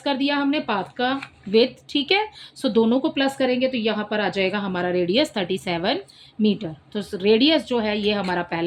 कर दिया हमने पाथ का विड्थ। ठीक है, सो दोनों को प्लस करेंगे तो यहाँ पर आ जाएगा हमारा रेडियस 37 मीटर। तो रेडियस जो है ये हमारा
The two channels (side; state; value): both; identical; correlation 1.00